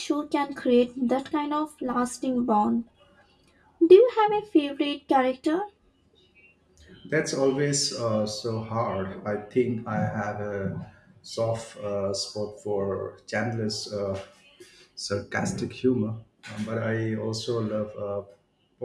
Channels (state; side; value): identical; both; correlation 1.00